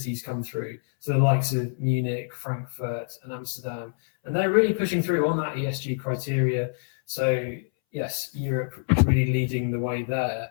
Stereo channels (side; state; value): right; silent; 61 dB below the other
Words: come through. So the likes of Munich, Frankfurt, and Amsterdam, and they're really pushing through on that ESG criteria. So yes, Europe is really leading the way there.